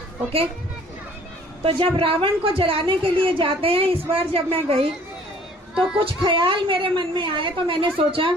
ओके, तो जब रावण को जलाने के लिए जाते हैं, इस बार जब मैं गई तो कुछ ख्याल मेरे मन में आए, तो मैंने सोचा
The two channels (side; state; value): both; normal; correlation 0.55